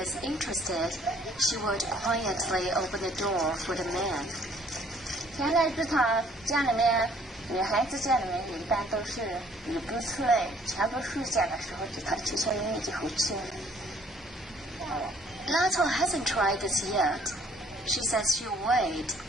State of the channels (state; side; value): normal; both; correlation 0.60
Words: interested, she would quietly open the door for the man. 现在这场家里面女孩子家里面一般都是你不出来，全部暑假的时候就她去小营就好去。Lato hasn't tried this yet. She says she'll wait